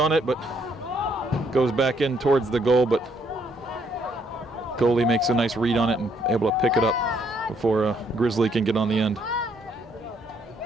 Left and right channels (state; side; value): normal; both; correlation 0.70